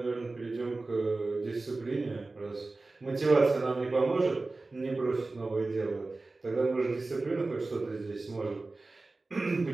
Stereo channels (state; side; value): quieter; left; 3.4 dB